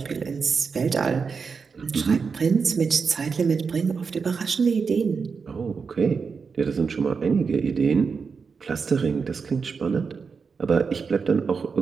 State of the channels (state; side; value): quieter; left; 5.4 dB